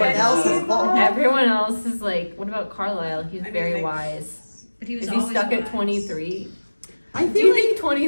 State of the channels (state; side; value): inverted; both; correlation -1.00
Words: else is Paul. Everyone else is like, what about Carlisle? He's very they- wise. But he was Is he always stuck at wise. 23? I Do feel you like